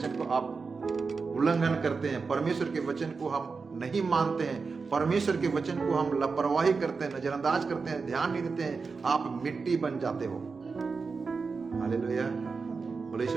को आप उल्लंघन करते हैं, परमेश्वर के वचन को हम नहीं मानते हैं, परमेश्वर के वचन को हम लापरवाही करते हैं, नजरअंदाज करते हैं, ध्यान नहीं देते हैं, आप मिट्टी बन जाते हो। हालेलुया, बोले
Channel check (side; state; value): left; quieter; 4.7 dB